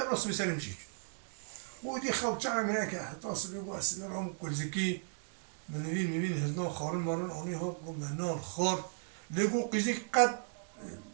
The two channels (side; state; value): left; silent; digital silence